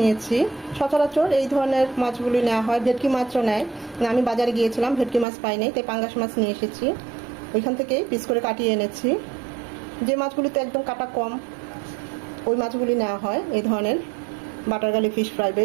সচরাচর এই ধরনের মাছগুলি নেওয়া হয়, ভেটকি মাছও নেয়। আমি বাজারে গিয়েছিলাম, ভেটকি মাছ পাইনি, তাই পাঙ্গাস মাছ নিয়ে এসেছি। ওইখান থেকে পিস করে কাটিয়ে এনেছি। যে মাছগুলিতে একদম কাটা কম ওই মাছগুলি নেওয়া হয় এই ধরনের বাটার গার্লিক ফিশ ফ্রাই বা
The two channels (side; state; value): left; drops out; at 5.2 s